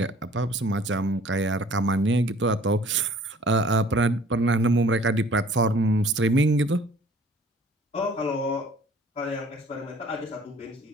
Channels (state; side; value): normal; both; correlation 0.53